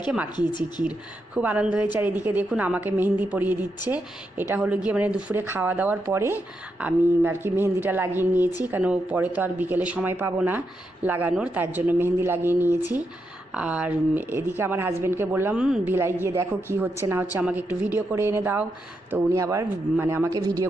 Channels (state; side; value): normal; both; correlation 0.84